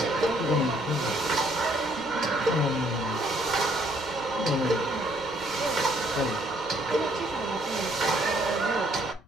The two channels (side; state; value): left; noise; rumble, 25 dB below the sound